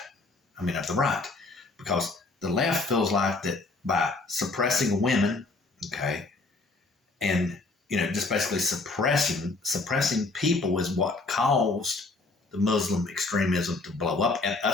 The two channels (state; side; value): quieter; right; 3.4 dB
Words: I mean, of the right, because the left feels like that by suppressing women, okay, and just basically suppressing people is what caused the Muslim extremism to blow up and